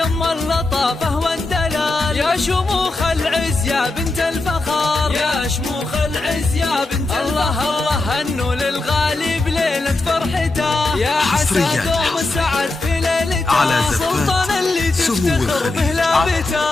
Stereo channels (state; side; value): quieter; right; 3.1 dB